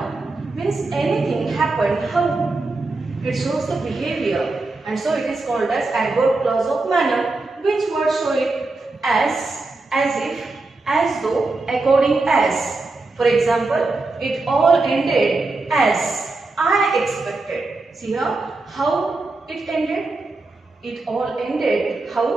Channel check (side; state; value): left; quieter; 3.4 dB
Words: Means anything happened, how? It shows the behavior. And so it is called as adverb clause of manner. Which word show it? As if, as though, according as. For example, it all ended as I expected. See here, how it ended? It all ended,